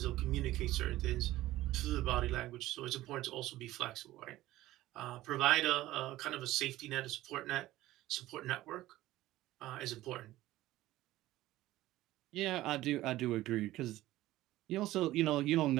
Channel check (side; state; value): left; quieter; 16.0 dB